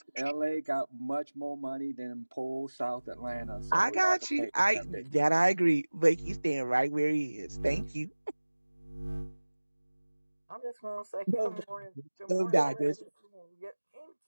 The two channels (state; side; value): inverted; both; correlation -1.00